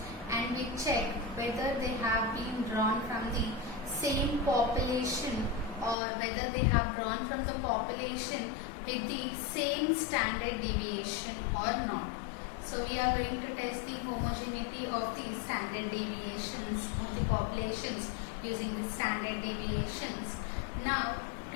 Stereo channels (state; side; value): drops out; right; at 6.0 s